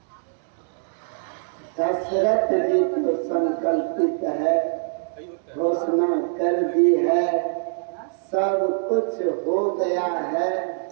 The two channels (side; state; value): left; silent; digital silence